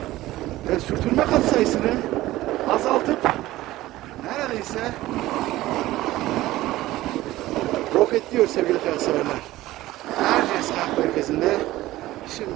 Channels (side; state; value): left; quieter; 16.6 dB